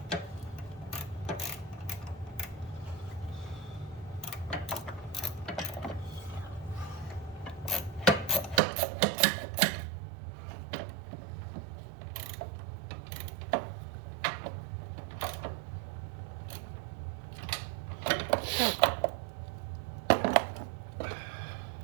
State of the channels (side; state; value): left; drops out; at 8.6 s